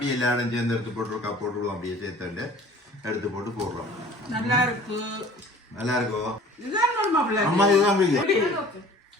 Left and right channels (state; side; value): normal; both; correlation 0.48